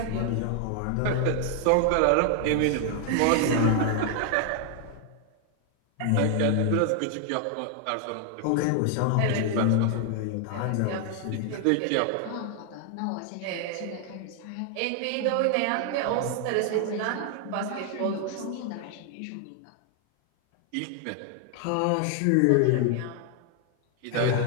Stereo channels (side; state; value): both; different; correlation 0.00